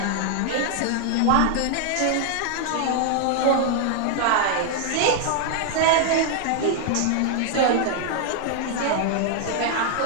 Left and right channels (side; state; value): both; different; correlation 0.00